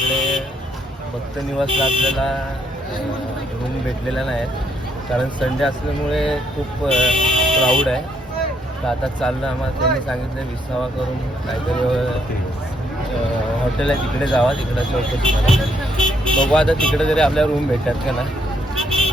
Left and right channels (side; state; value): both; normal; correlation 0.72